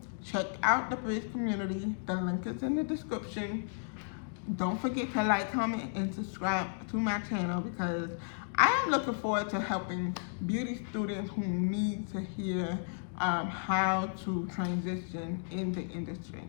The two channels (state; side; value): silent; right; digital silence